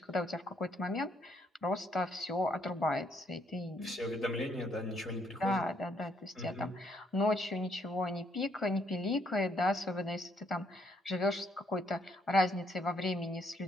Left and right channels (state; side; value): normal; both; correlation 0.71